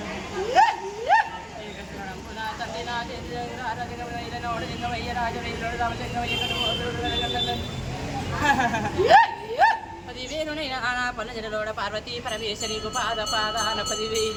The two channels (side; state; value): both; identical; correlation 1.00